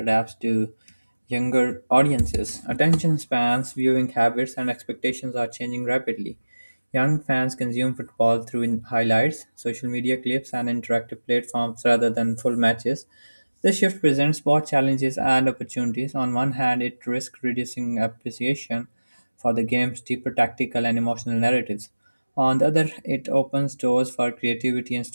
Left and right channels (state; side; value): inverted; both; correlation -1.00